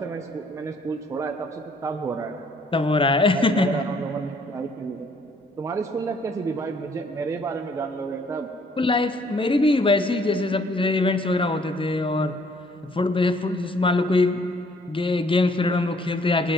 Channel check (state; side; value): normal; both; correlation 0.62